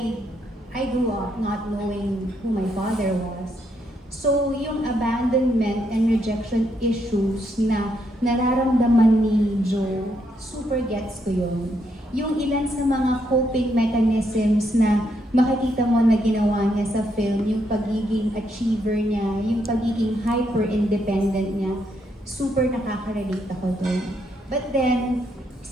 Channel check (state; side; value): normal; both; correlation 0.77